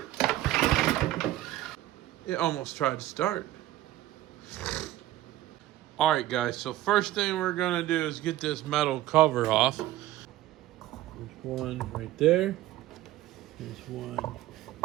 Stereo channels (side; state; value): left; quieter; 14.6 dB